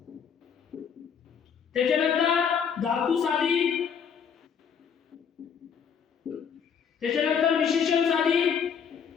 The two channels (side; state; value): right; quieter; 7.2 dB